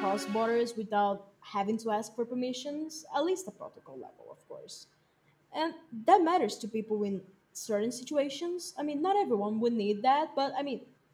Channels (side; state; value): both; identical; correlation 1.00